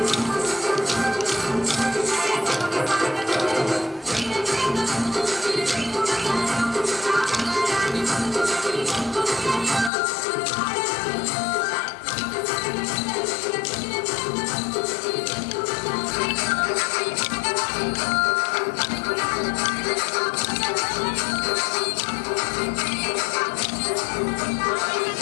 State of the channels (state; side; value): drops out; right; at 9.9 s